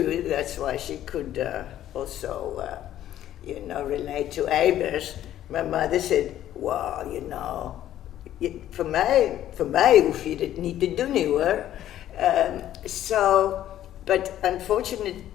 That's why she could also, you know, relate to Eybers. My mother said, well, you know, for mij hoef je dit niet te doen, hoor. But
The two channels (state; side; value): quieter; right; 12.2 dB